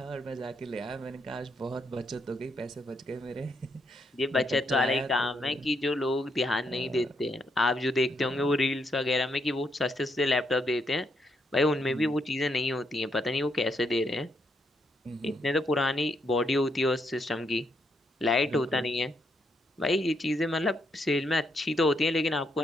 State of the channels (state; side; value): normal; both; correlation 0.77